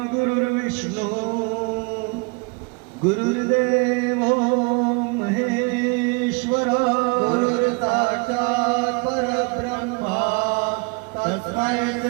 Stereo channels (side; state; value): left; quieter; 30.2 dB